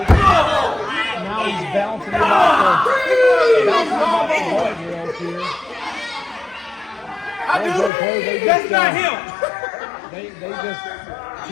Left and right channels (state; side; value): drops out; right; at 7.9 s